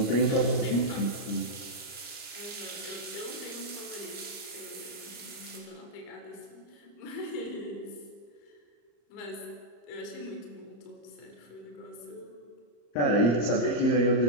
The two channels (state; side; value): late; right; 34 ms